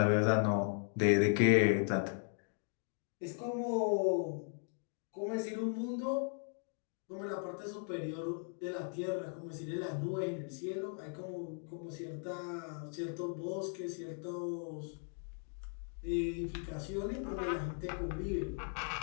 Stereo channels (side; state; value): right; silent; 53 dB below the other